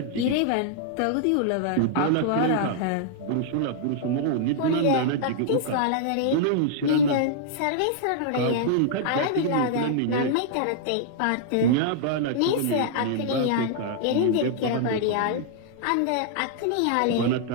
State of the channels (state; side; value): different; both; correlation -0.01